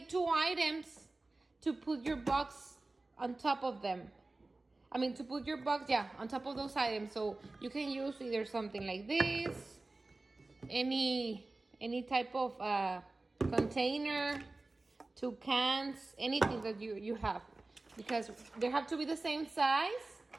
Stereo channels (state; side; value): quieter; left; 3.1 dB